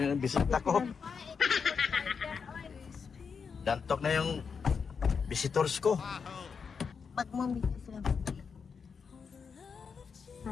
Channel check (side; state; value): right; quieter; 5.9 dB